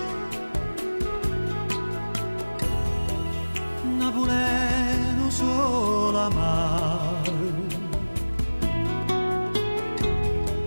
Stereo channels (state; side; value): inverted; both; correlation -1.00